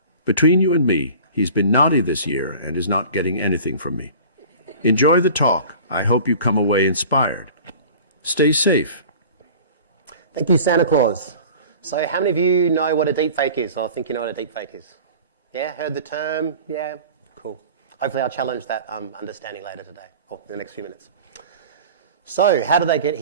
Between you and me, he's been naughty this year and is not getting anything from me. Enjoy the talk. I hope you come away inspired. Stay safe. Thank you, Santa Claus. So how many of you know what a deepfake is, or think you know what a deepfake is? Yeah, heard the term? Yeah, cool. Hopefully I'll challenge that understanding later today, or in the next few minutes. So how did they get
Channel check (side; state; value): both; inverted; correlation -0.42